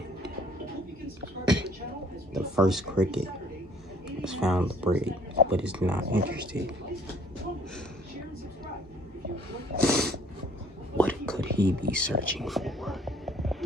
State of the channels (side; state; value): both; normal; correlation 0.58